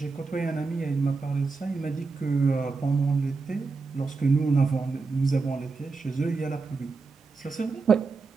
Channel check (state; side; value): quieter; left; 4.2 dB